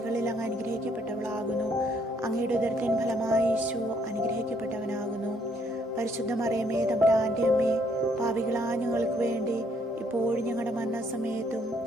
അങ്ങ് അനുഗ്രഹിക്കപ്പെട്ടവളാകുന്നു. അങ്ങയുടെ ഉദരത്തിൻ ഫലമായി ഈശോ അനുഗ്രഹിക്കപ്പെട്ടവനാകുന്നു. പരിശുദ്ധ മറിയമേ തമ്പുരാന്റെ അമ്മേ, പാപികളായ ഞങ്ങൾക്ക് വേണ്ടി ഇപ്പോഴും ഞങ്ങളുടെ മരണസമയത്തും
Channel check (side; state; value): both; normal; correlation 0.68